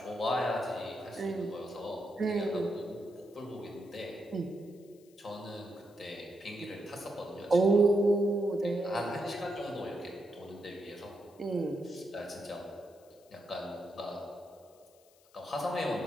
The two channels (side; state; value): left; noise; hiss, 30 dB below the sound